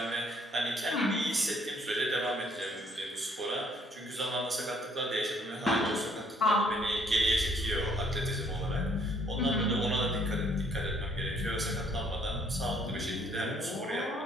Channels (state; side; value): normal; both; correlation 0.64